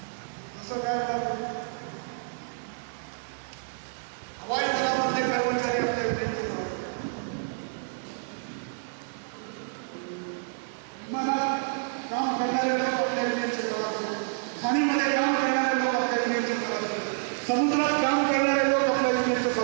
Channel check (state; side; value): silent; left; digital silence